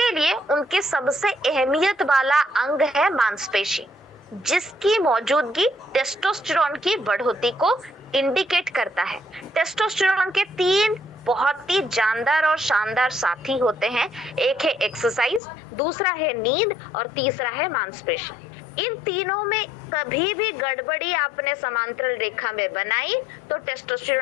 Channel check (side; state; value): right; drops out; at 15.4 s